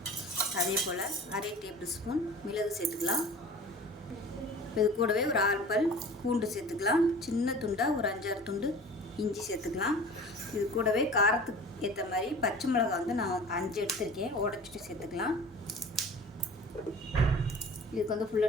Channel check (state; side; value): normal; both; correlation 0.41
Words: அதே போல் 1/2 டேபிள் ஸ்பூன் மிளகு சேர்த்துக்கலாம். இது கூடவே ஒரு 6 பல் பூண்டு சேர்த்துக்கலாம். சின்ன துண்டாக ஒரு 5-6 துண்டு இஞ்சி சேர்த்துக்கலாம். இது கூடவே காரத்துக்கு ஏற்ற மாதிரி பச்சை மிளகாய் வந்து நான் 5 எடுத்துருக்கேன், உடச்சிட்டு சேர்த்துக்கலாம். இதுக்கு வந்து ஃபுல்